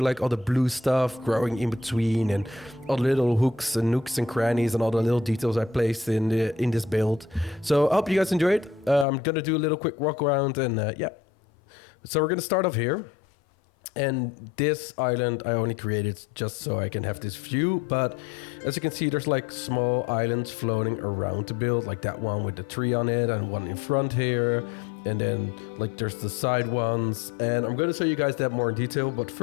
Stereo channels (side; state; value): right; drops out; at 9.1 s